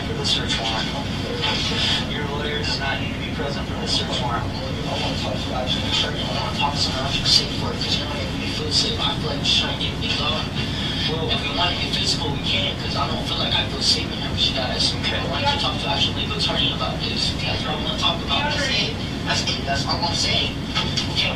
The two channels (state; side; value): identical; both; correlation 1.00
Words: for the search warrant. Your lawyer does not need to be present for the search warrant. I want to talk to someone else who's safe for it, because you know, if we feel safe, I feel like we're trying to get things on. Well, if we want to get physical, we can, because I don't feel like I feel safe in here with you guys. Okay. I want to talk to actual legal attorney about this. That's what I want to talk about. That's all I'm saying. You